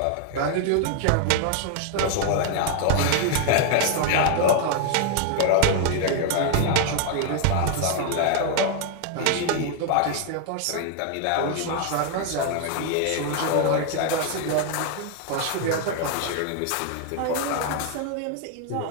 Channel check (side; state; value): both; different; correlation 0.00